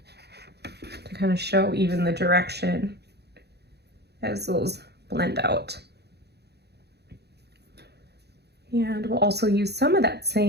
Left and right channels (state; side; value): late; left; 0.48 ms